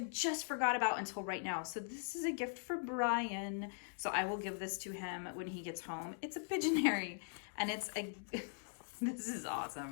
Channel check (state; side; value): silent; right; digital silence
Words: just forgot about until right now. So this is a gift for Brian. So I will give this to him when he gets home. It's a Pigeonary, and it's a, this is